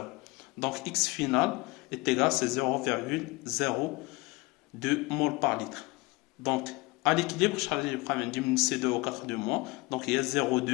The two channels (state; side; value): quieter; right; 23.8 dB